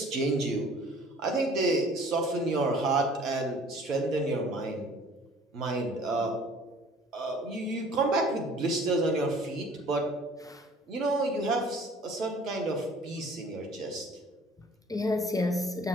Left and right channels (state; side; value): normal; both; correlation 0.52